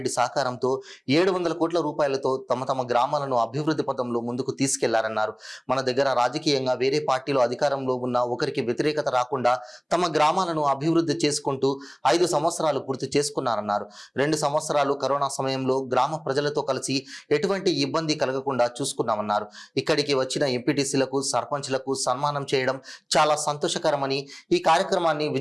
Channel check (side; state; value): both; identical; correlation 1.00